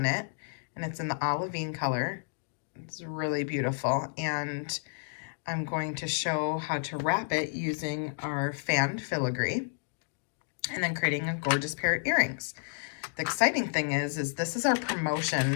it, and it's in the Olivine color. It's really beautiful, and I'm going to show how to wrap it using our fanned filigree and then creating a gorgeous pair of earrings. The exciting thing is this is our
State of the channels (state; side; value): silent; right; digital silence